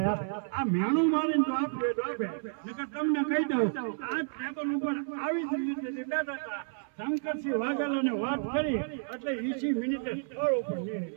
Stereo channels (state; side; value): silent; left; 57 dB below the other